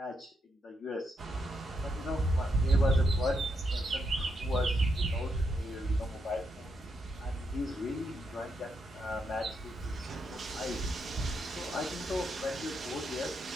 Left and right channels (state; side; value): normal; both; correlation 0.80